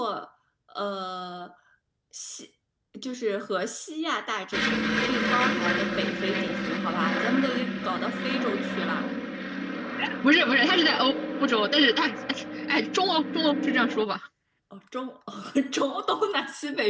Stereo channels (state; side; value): identical; both; correlation 1.00